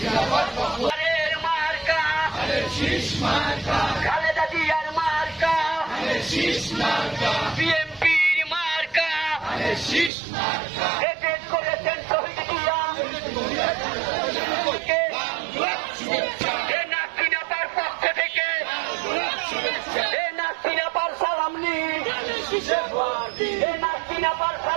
মার্কা খালেদা জিয়ার মার্কা, বিএনপির মার্কা শেষ করেছেন শহীদ জিয়া। নাসিনাপার পক্ষ থেকে নাসিনাপার সালাম নিন, নাসিনাপার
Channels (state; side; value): drops out; left; at 10.1 s